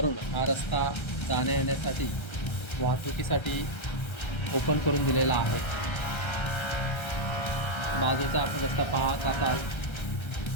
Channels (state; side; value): late; right; 1.3 ms